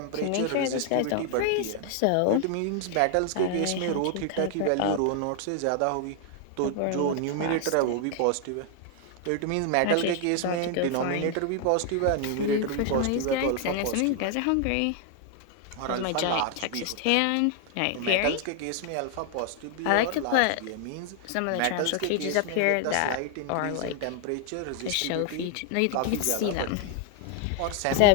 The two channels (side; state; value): both; different; correlation 0.00